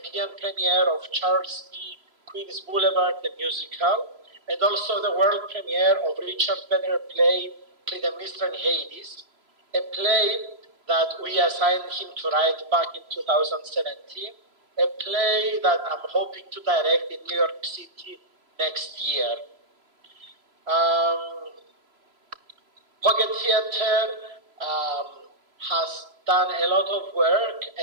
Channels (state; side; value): late; left; 3.0 ms